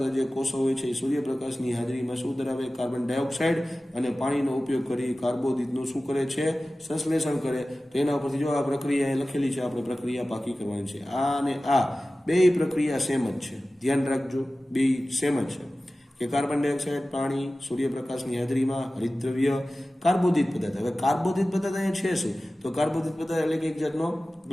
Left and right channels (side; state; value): both; normal; correlation 0.96